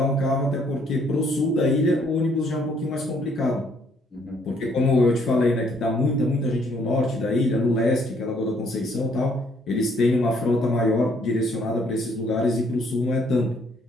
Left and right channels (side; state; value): both; normal; correlation 0.66